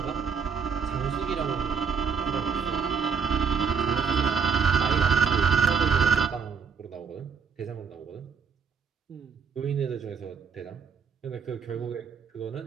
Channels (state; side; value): quieter; left; 6.2 dB